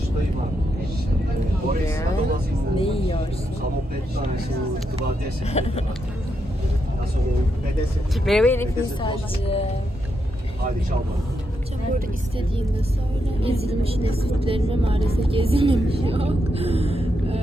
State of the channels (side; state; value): both; normal; correlation 0.82